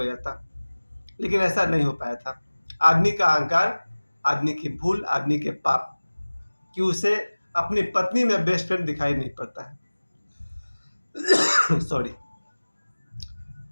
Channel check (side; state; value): both; inverted; correlation -1.00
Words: जाता। लेकिन ऐसा नहीं हो पाया था। आदमी का अहंकार, आदमी की भूल, आदमी के पाप कि उसे अपनी पत्नी में बेस्ट फ्रेंड दिखाई नहीं पड़ता है। सॉरी।